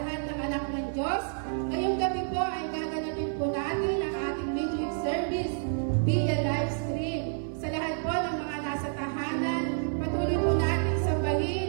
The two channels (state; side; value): silent; left; 58 dB below the other